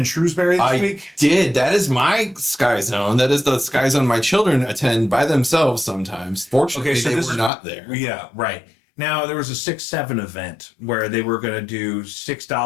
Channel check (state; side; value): drops out; right; at 7.5 s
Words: Shrewsbury this week? I did. That is my Sky Zone. That is the Sky Zone my children attend by themselves sometimes. Fortunately, they were not there. Yeah, right. Now, there was a 6-7 event where they were going to do